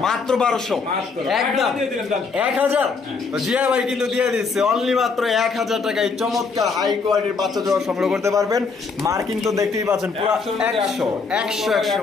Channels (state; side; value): quieter; right; 4.7 dB